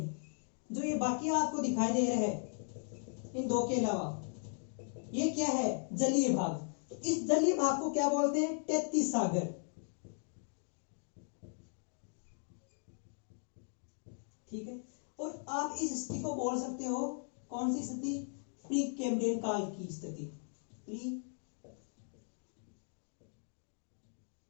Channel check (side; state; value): right; silent; 53 dB below the other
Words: जो ये बाकी आपको दिखाई दे रहा है इन दो के अलावा, ये क्या है? जलीय भाग। तो इस जलीय भाग को क्या बोलते हैं? 33 सागर। ठीक है, और आप इस स्थिति को बोल सकते हो, कौन सी स्थिति? प्री कैम्ब्रियन काल की स्थिति। प्री